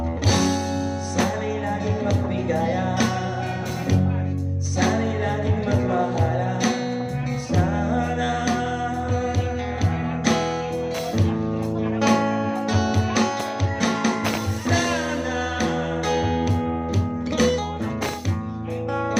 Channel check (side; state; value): both; identical; correlation 1.00